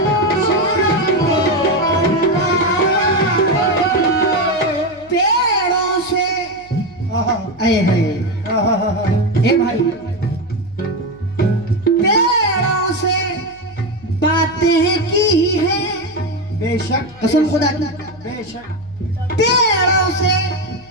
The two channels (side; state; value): left; noise; hum, 26 dB below the sound